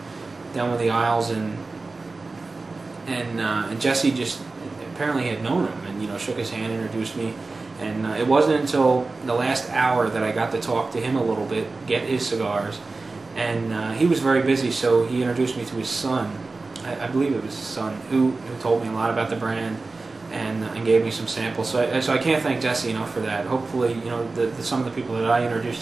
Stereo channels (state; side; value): quieter; left; 3.6 dB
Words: down one of the aisles, and Jesse just apparently had known him, and shook his hand, introduced me. And it wasn't until the last hour that I got to talk to him a little bit, get his cigars. And he was very busy, so he introduced me to his son. I believe it was his son, who told me a lot about the brand. And gave me some samples. So I can't thank Jesse enough for that. Hopefully, some of the people that I introduced